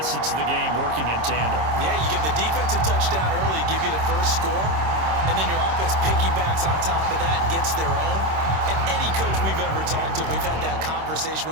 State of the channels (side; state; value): left; late; 26 ms